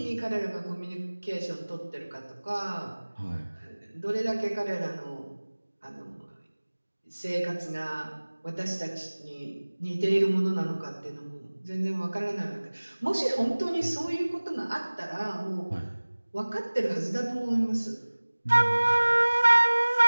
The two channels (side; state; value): both; inverted; correlation -1.00